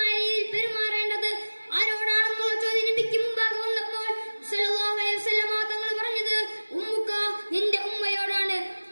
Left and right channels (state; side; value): inverted; both; correlation -1.00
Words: രീതിയിൽ പെരുമാറേണ്ടത് ആരോടാണെന്നുള്ള ചോദ്യം നബിക്ക് മുമ്പാകെ വന്നപ്പോൾ സല്ലല്ലാഹു അലൈഹി വസല്ലം തങ്ങൾ പറഞ്ഞത് ഉമ്മുക, നിന്റെ ഉമ്മയോടാണ്.